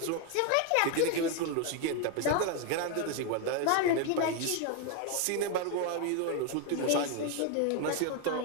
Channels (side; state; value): both; different; correlation 0.01